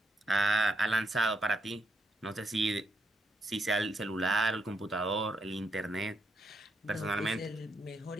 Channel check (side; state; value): both; normal; correlation 0.77